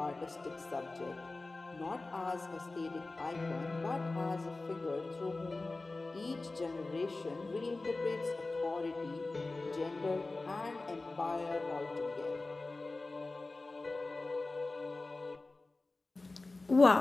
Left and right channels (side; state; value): right; quieter; 3.3 dB